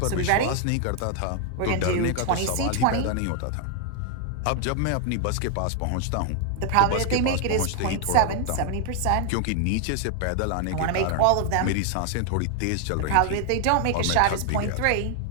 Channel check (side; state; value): both; different; correlation 0.00